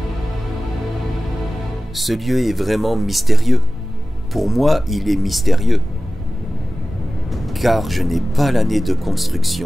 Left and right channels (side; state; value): both; normal; correlation 0.96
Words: Ce lieu est vraiment mystérieux. Pour moi, il est mystérieux. Car je n'ai pas l'année de